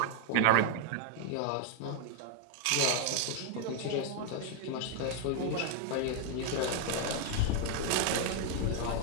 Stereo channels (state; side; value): different; both; correlation 0.00